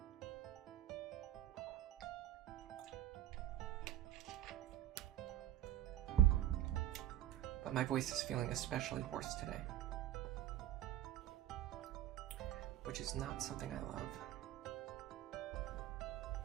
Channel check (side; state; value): left; quieter; 12.7 dB